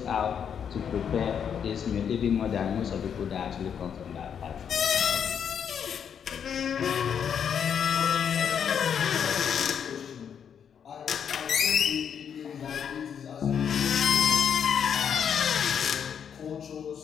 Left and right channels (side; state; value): right; quieter; 7.9 dB